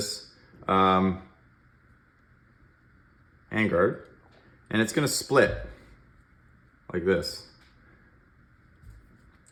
handguard, and it's gonna split like this.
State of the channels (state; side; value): identical; both; correlation 1.00